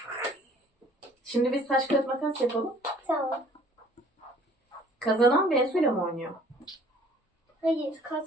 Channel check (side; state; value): both; normal; correlation 0.55